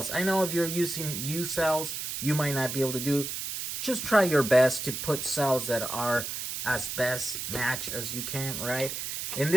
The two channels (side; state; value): right; noise; hiss, 5 dB below the sound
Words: I know if you're using U cells, you might not be able to do. Just try your best to put cells that are as best match as you can, right? In